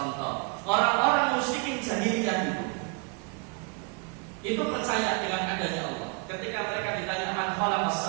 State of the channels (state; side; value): quieter; left; 34.5 dB